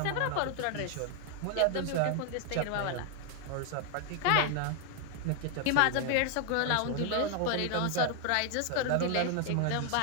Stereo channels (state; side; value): different; both; correlation 0.00